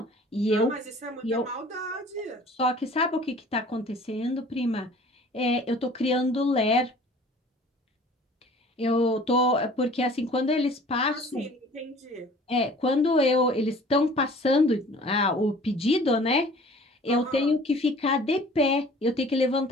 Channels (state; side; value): normal; both; correlation 0.49